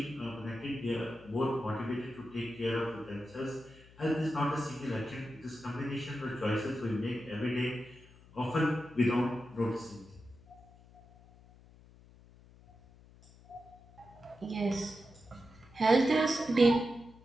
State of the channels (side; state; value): left; noise; hum, 24 dB below the sound